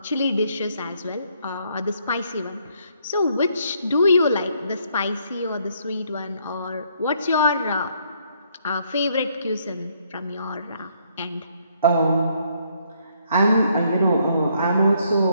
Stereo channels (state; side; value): inverted; both; correlation -0.69